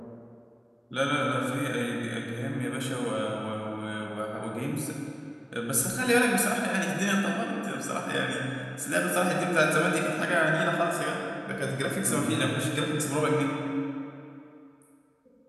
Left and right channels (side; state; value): both; identical; correlation 1.00